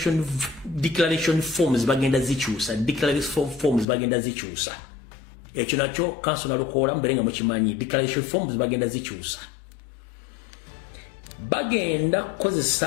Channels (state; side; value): drops out; right; at 3.9 s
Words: forms bagenda zikyusa ekyo nakyo council nalukola mbere nga mukimanyi declaration forms bagenda zikyusa